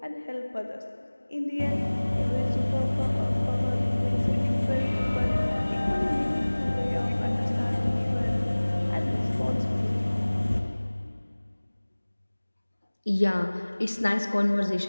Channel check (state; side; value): inverted; both; correlation -1.00